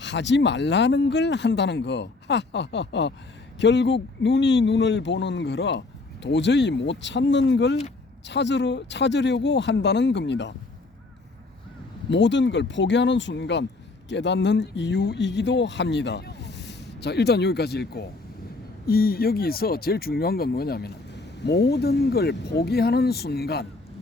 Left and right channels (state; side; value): quieter; right; 3.4 dB